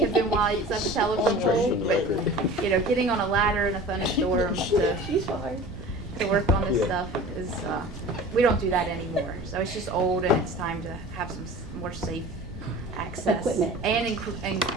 been why it's at the telephone pole, but, you know, getting on a ladder in a thunderstorm to She's fine. to work on this stuff is, we don't do that anymore. So it's just old and it's time to have some more safe access. Equipment. And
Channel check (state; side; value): noise; right; rumble, 14 dB below the sound